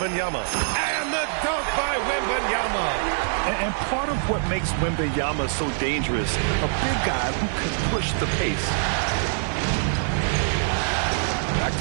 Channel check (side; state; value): left; silent; 62 dB below the other